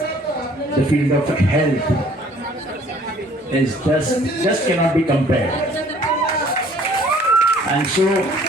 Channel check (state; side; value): normal; both; correlation 0.56